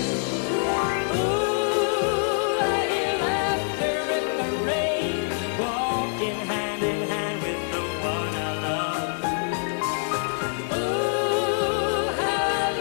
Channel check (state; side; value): silent; right; 62 dB below the other